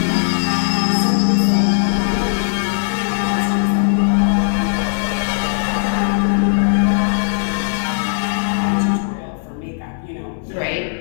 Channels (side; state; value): right; silent; 63 dB below the other